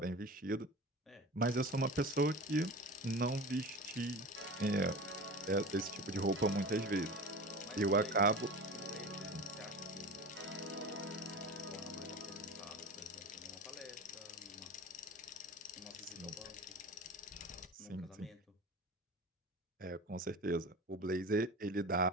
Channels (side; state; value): both; normal; correlation 0.33